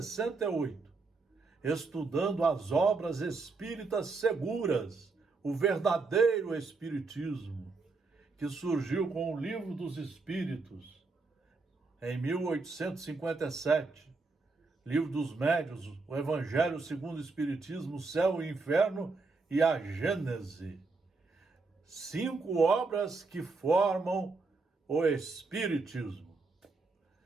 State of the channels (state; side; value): quieter; left; 3.9 dB